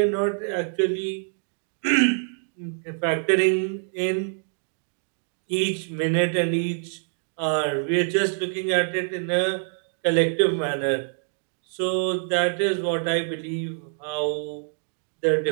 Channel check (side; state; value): left; silent; digital silence